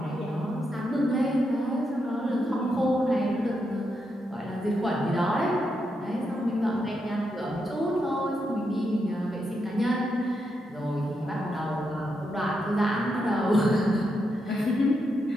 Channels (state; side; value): normal; both; correlation 0.83